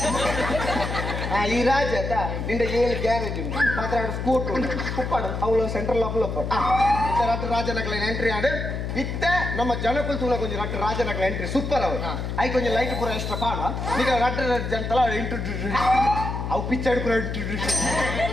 ಈ ರಾಜ ನಿಂದ 7 ಗ್ಯಾರೇಜ್ ಉಂಟು 16 ಸ್ಕೂಟರ್ ಉಂಟು ಉಪ್ಪಾಡು ಅವಳು ಸೆಂಟ್ರಲ್ ಲಾಪಲ್ ಇತ್ತ ರಡ್ಡು ರಾಜನಕಲ ಎಂಟ್ರಿ ಆಡು ಇತ್ತ ನಮ್ಮ ಜನಕುಲ್ ತೂನ ಕೊಂಚ ರಡ್ಡು ರಾಜನಕಲ ಎಂಟ್ರಿ ಸೂಪರ್ ಅವು ಐ ಕೊಂಚ ಲೈಟ್ ಪೂರ ಎಕ್ಸ್ಟ್ರಾ ಪಾಡ ಈಗ ರಡ್ಡು ಜನತಲ ಇಂಟ್ರೊಡ್ಯೂಸ್ ಅವು ಪಿಕ್ಚರ್ ಪೂರ ಇಂಟ್ರೊಡ್ಯೂಸ್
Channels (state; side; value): noise; left; hum, 4 dB below the sound